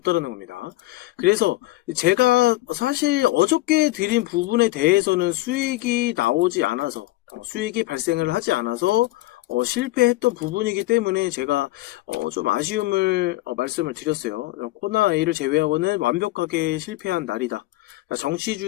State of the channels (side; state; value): right; quieter; 18.5 dB